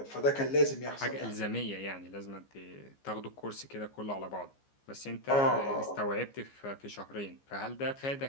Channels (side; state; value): right; late; 15 ms